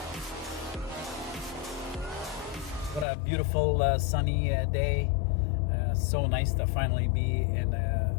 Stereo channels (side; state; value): right; drops out; at 3.1 s